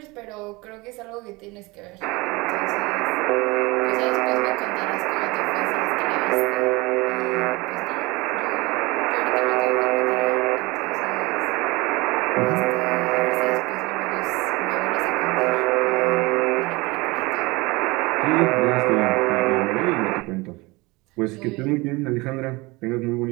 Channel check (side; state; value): left; quieter; 23.8 dB